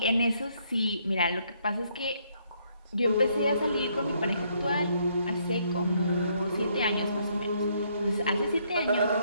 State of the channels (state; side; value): inverted; both; correlation -0.70